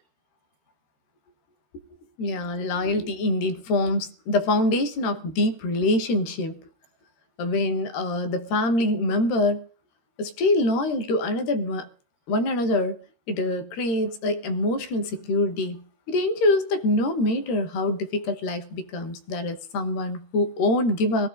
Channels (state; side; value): late; right; 13 ms